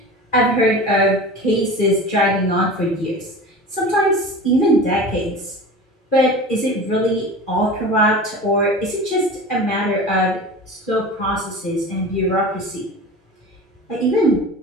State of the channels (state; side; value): normal; both; correlation 0.34